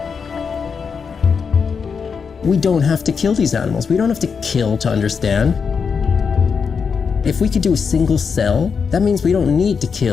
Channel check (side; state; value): right; quieter; 5.9 dB